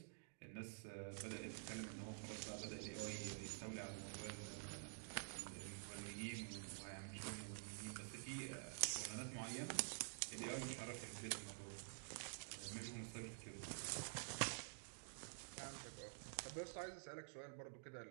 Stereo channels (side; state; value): left; silent; digital silence